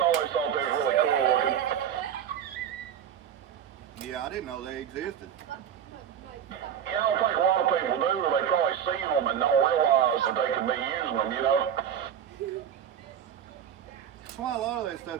thought they was really cool looking. Yeah, I didn't know they existed. Yeah, I don't think a lot of people do. They probably see them and don't realize that they could be using them, That's why a lot of that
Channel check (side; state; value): left; quieter; 9.1 dB